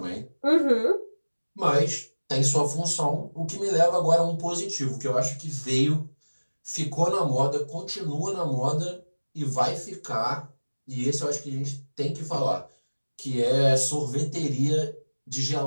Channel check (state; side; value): inverted; both; correlation -1.00